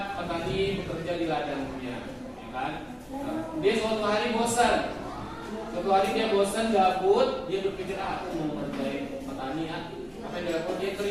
petani bekerja di ladangnya, ya kan? Dia suatu hari bosan. Suatu hari dia bosan, gabut, dia berpikir aku mau mengerjain petani ya. Apa yang dilakukan? Dia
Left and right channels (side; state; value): both; identical; correlation 1.00